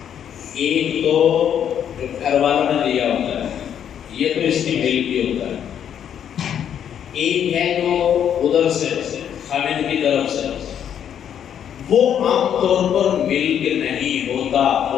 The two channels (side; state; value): right; quieter; 9.2 dB